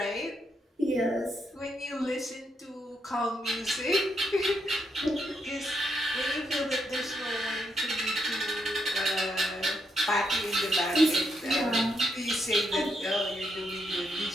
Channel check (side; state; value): both; normal; correlation 0.79